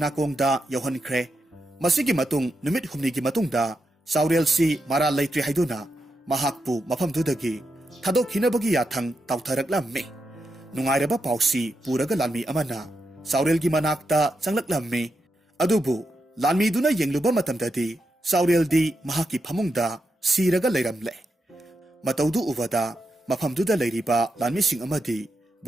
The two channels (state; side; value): normal; both; correlation 0.86